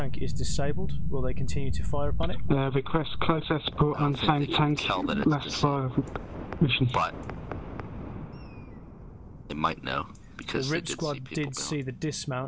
is disabled. Will they continue to fire upon it? Request close air support on same tank. Last fire mission. But they might know because the RIP squad did see the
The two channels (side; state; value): both; identical; correlation 1.00